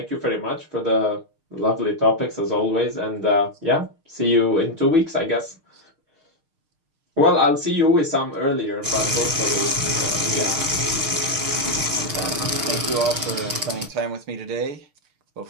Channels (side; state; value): left; late; 6.5 ms